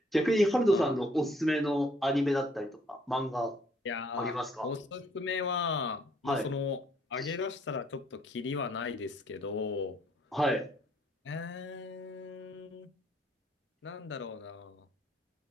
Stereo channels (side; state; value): both; normal; correlation 0.65